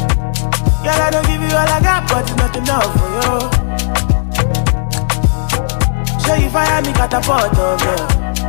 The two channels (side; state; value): right; silent; digital silence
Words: Girl, I don't give you all I got, but it's not enough for you. Show you fire me catapult of love.